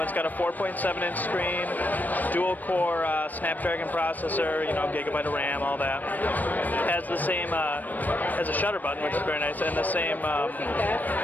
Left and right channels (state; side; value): late; right; 0.085 ms